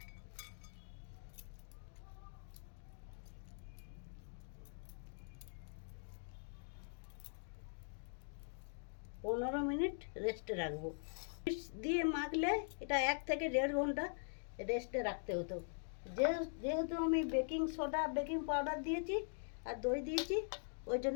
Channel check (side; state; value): right; silent; digital silence